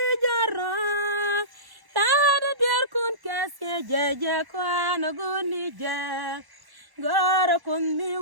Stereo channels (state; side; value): late; left; 1.1 ms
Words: jara tada der kun kaske jaja kwa na guni ja gar kun mi